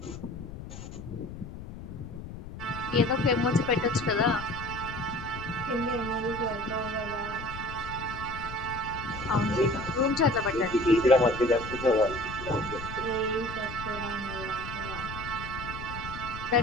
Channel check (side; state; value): left; noise; rumble, 11 dB below the sound